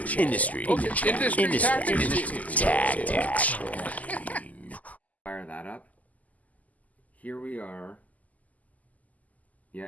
tactics. Fire that up. Here we are. Yeah,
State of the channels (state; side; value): late; right; 0.076 ms